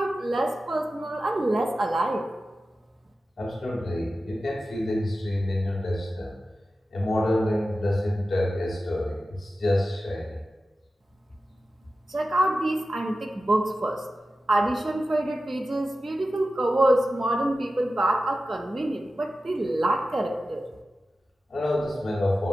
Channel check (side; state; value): both; normal; correlation 0.93